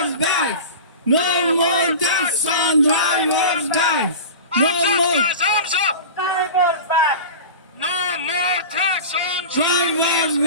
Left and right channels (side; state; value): both; inverted; correlation -0.32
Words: back. No more tax on drivers back. No more Arms up! Drivers back! No more tax on drivers